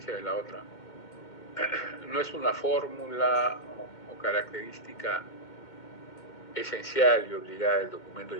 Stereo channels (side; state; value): right; late; 2.2 ms